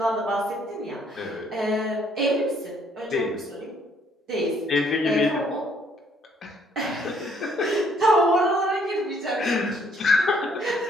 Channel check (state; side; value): normal; both; correlation 0.65